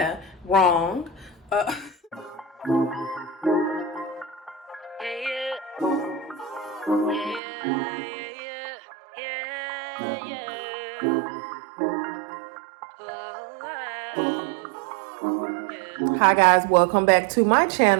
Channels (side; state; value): left; drops out; at 7.4 s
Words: wrong. Hi guys, welcome back to my